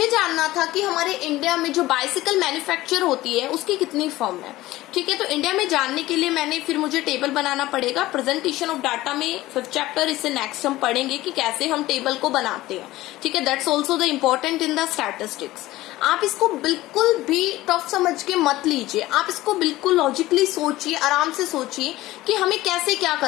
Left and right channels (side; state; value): right; quieter; 17.1 dB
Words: जानना था कि हमारे इंडिया में जो बाइसिकल मैन्युफैक्चर होती है उसकी कितनी फर्म है, ठीक है। तो इंडिया में जानने के लिए फिर मुझे टेबल बनाना पड़ेगा। प्रेजेंटेशन ऑफ डाटा में 5th चैप्टर, इससे नेक्स्ट हम पढ़ेंगे कि कैसे हम टेबल को बनाते हैं, ठीक है। That's also the important in the statistics. आप इसको बिल्कुल भी टफ समझ के मत लीजिए, आप इसको बिल्कुल लॉजिकली सोचिए, आराम से सोचिए कि हमें कैसे क्या